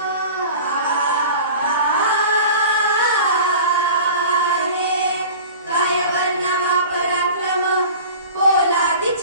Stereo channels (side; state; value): both; inverted; correlation -0.39